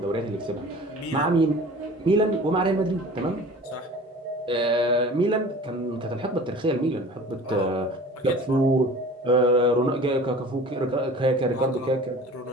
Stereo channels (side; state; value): both; normal; correlation 0.42